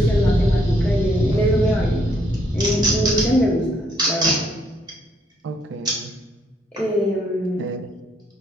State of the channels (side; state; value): both; normal; correlation 0.70